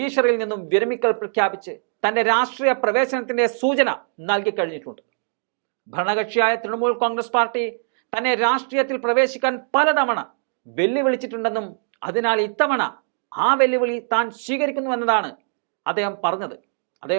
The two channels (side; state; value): left; silent; digital silence